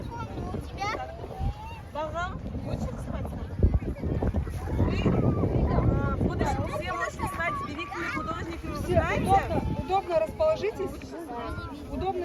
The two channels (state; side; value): identical; both; correlation 1.00